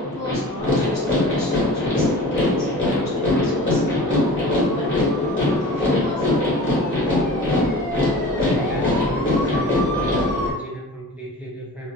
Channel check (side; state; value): both; normal; correlation 0.39